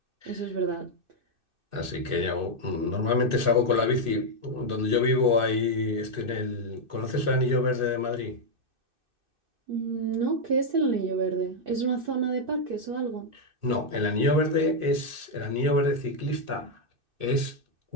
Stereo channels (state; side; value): late; left; 2.6 ms